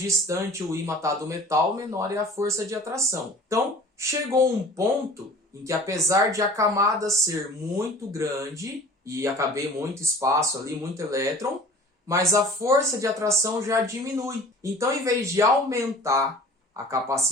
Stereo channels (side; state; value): both; normal; correlation 0.44